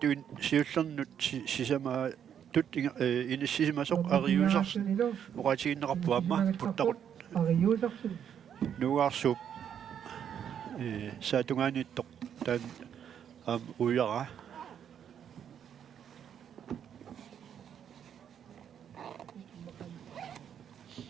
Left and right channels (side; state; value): left; quieter; 8.8 dB